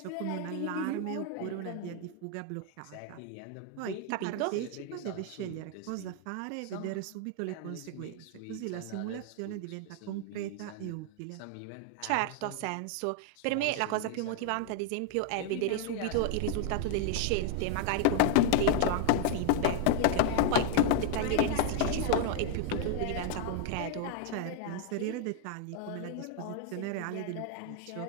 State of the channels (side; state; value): both; different; correlation 0.00